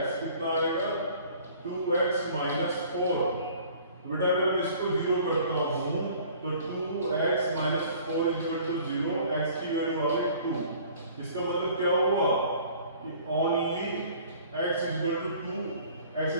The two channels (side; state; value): both; inverted; correlation -0.51